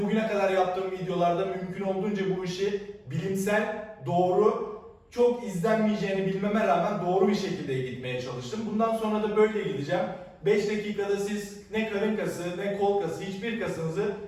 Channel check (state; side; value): identical; both; correlation 1.00